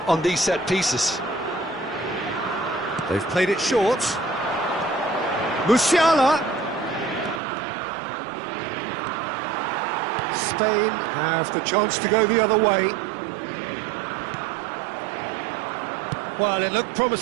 these set pieces. They've played it short. Musiala. Spain have the chance to go the other way. Well, it looked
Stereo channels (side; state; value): left; drops out; at 7.4 s